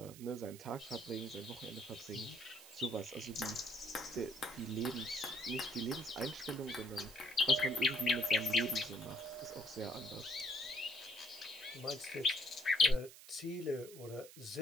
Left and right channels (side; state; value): right; noise; hiss, 17 dB below the sound